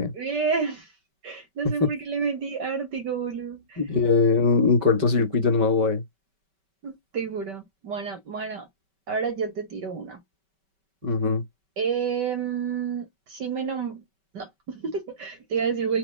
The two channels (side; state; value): left; late; 5.2 ms